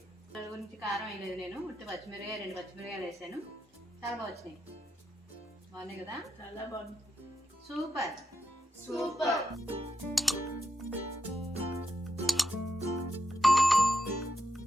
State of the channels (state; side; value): normal; both; correlation 0.84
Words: దాని గురించి కారం వేయలేదు నేను, ఉట్టి పచ్చిమిరకాయ 2 పచ్చిమిరకాయలు వేసాను. చాలా బాగా వచ్చినాయి. బాగున్నాయి కదా, చాలా బాగుంది. సూపర్.